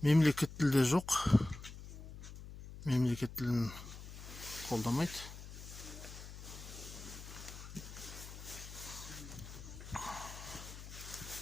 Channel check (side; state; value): left; noise; hum, 12 dB below the sound